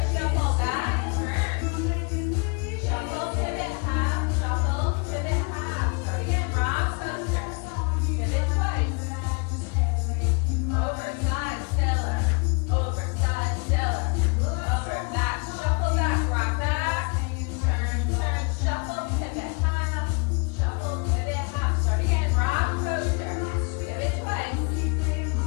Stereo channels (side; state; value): right; quieter; 33.2 dB